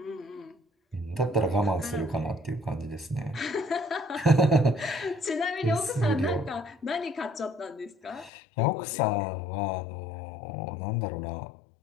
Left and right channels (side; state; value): right; drops out; at 8.3 s